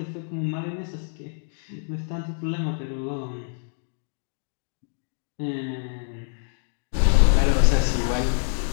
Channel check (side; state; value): right; silent; digital silence